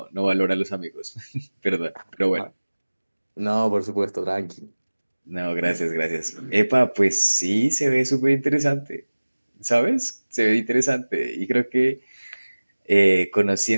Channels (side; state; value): both; inverted; correlation -1.00